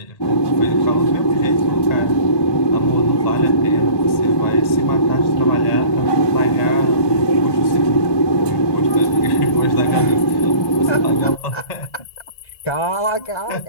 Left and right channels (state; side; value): late; right; 1.1 ms